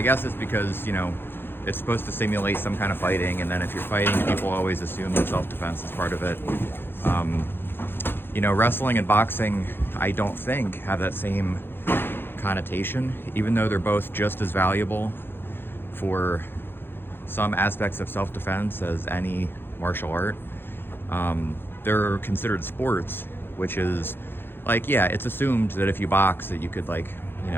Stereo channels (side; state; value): right; late; 0.10 ms